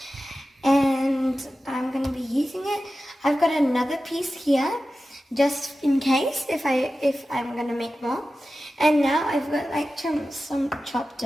and I'm going to be using it. I've got another piece here just in case if I'm going to make more. And now I've got like some chopped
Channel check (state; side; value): normal; both; correlation 0.94